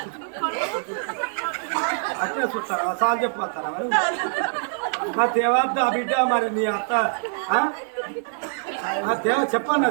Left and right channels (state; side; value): silent; left; digital silence